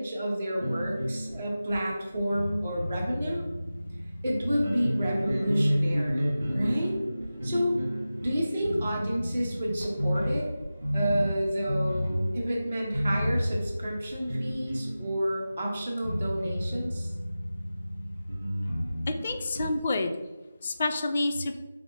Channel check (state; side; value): inverted; both; correlation -0.94